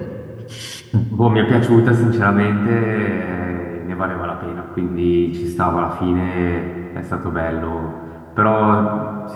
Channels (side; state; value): both; identical; correlation 1.00